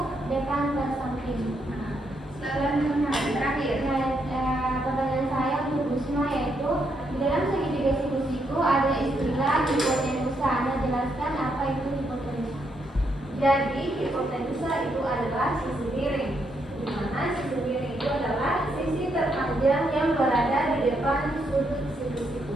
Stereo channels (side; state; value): both; normal; correlation 0.78